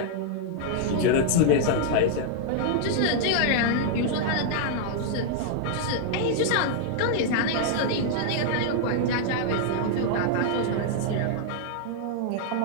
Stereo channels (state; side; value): different; both; correlation -0.01